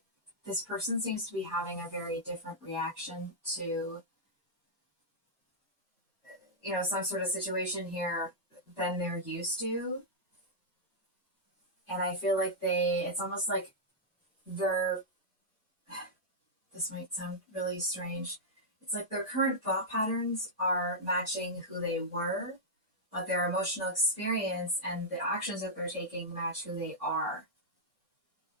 this person seems to be having a very different reaction to, you know, some sort of situation here than they're used to. And I feel like it's almost like they're, this might sound really strange. It's like their current thought patterns are matching who they were, but their emotional experience and the actions that they're taking match who they are,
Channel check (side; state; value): both; normal; correlation -0.09